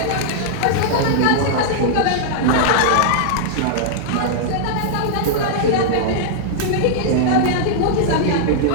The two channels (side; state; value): both; different; correlation -0.01